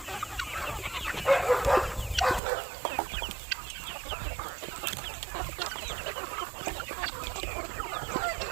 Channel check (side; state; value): left; drops out; at 2.4 s